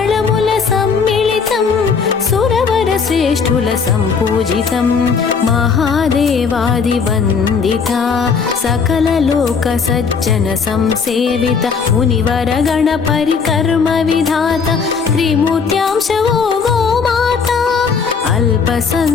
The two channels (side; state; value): right; quieter; 5.6 dB